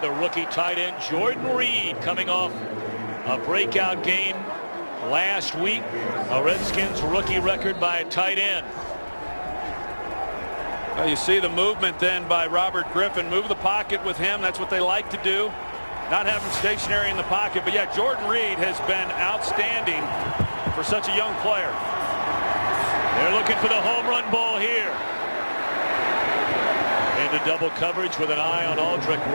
the rookie tight end Jordan Reed, coming off a breakout game last week. A Redskins rookie record by a tight end. Well, you see the movement then by Robert Griffin. Move the pocket with him. That's what they like to do. Not have him stationary in the pocket. But yeah, Jordan Reed has been outstanding for such a young player. They're looking for the home run ball here. Into double coverage with an eye on Aldrick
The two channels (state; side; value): inverted; both; correlation -1.00